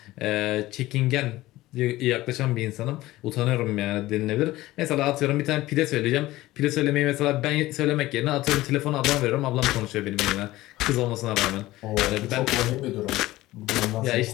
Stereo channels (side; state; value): right; quieter; 17.3 dB